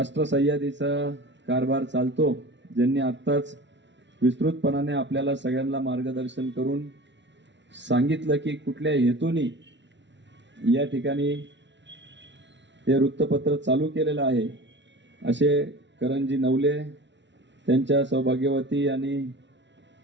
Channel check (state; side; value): late; left; 0.52 ms